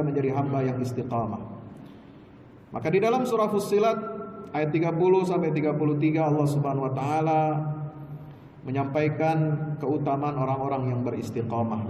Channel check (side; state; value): both; identical; correlation 1.00